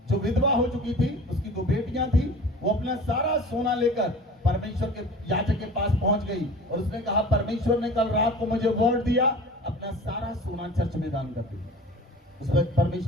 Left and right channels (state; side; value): normal; both; correlation 0.41